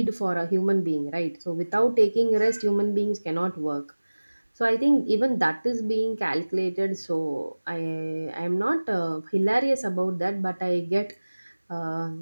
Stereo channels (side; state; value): both; inverted; correlation -1.00